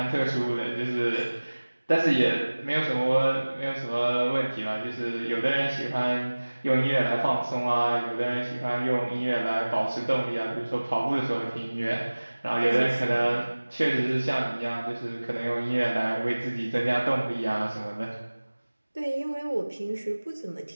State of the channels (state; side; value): inverted; both; correlation -1.00